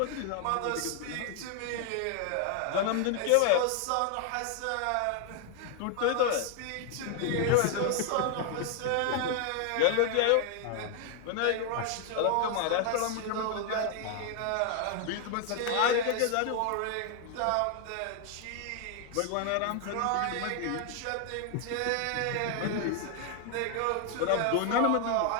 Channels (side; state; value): both; different; correlation 0.00